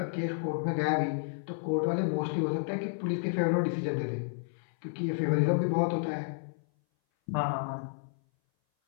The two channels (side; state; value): right; silent; 57 dB below the other